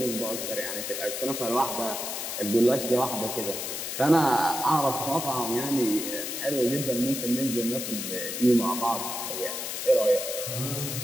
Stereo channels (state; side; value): noise; left; hiss, 4 dB below the sound